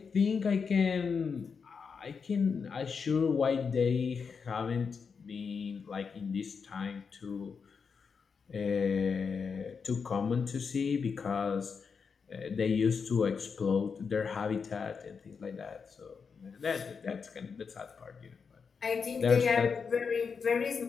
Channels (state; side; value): quieter; right; 5.7 dB